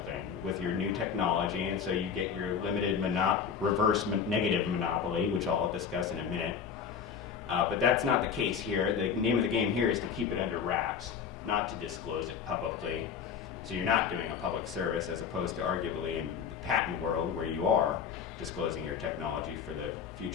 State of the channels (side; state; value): right; quieter; 7.0 dB